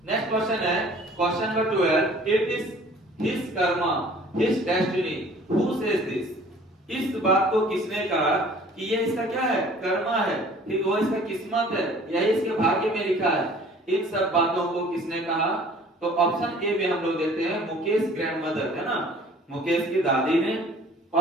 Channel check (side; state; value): both; normal; correlation 0.51